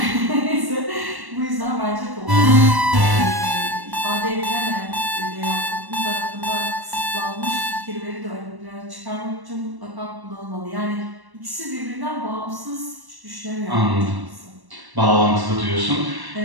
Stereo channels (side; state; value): left; late; 1.1 ms